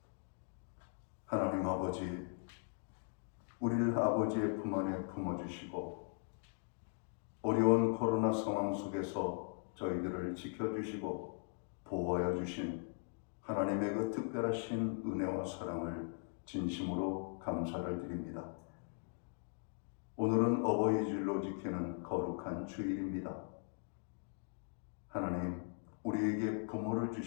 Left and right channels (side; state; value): right; silent; 51 dB below the other